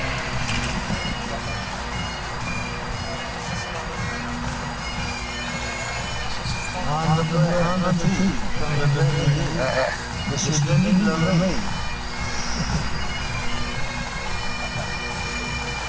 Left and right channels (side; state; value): both; identical; correlation 1.00